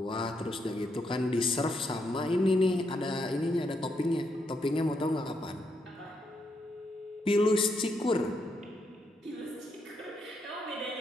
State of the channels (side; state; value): both; normal; correlation 0.79